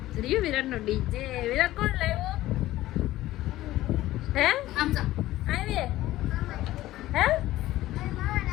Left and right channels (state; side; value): quieter; right; 15.7 dB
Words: રહ્યું વિરાટનો ડીજે. વિરાટ કોણ લાવ્યો? હે આવી હે